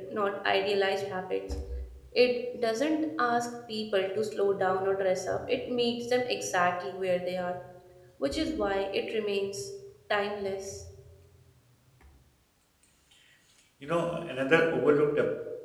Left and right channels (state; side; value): identical; both; correlation 1.00